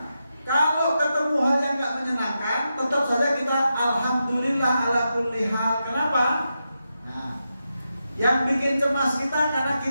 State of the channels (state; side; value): inverted; both; correlation -0.87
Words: kalau ketemu hal yang gak menyenangkan, tetap saja kita alhamdulillah ala kulli hal. Kenapa? Nah, yang bikin cemas kita karena